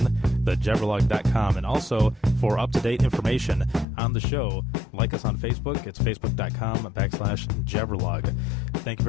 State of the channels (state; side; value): drops out; right; at 3.9 s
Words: thejabberlog.com. And also, for up-to-date information on the show, like us on Facebook. It's facebook.com/Jabberlog. Thank you